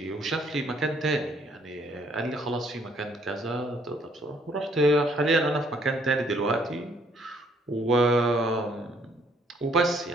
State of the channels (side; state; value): both; normal; correlation 0.66